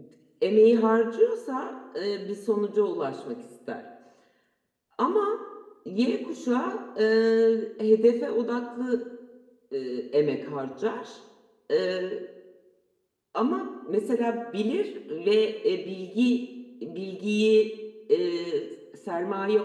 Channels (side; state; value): both; identical; correlation 1.00